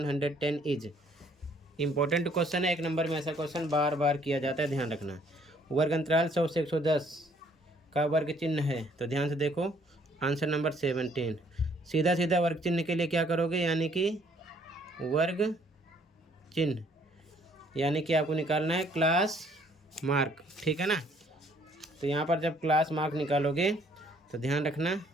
is. Important question है, 1 नंबर में ऐसा क्वेश्चन बार बार किया जाता है, ध्यान रखना। वर्ग अंतराल 100 से 110 का वर्ग चिन्ह है, तो ध्यान से देखो। Answer number 17। सीधा सीधा वर्ग चिन्ह के लिए क्या करोगे, यानी कि वर्ग चिन्ह, यानी कि आपको निकालना है क्लास मार्क। ठीक है ना, तो यहाँ पर जब क्लास मार्क निकालोगे तो ध्यान रखना,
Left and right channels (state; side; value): normal; both; correlation 0.63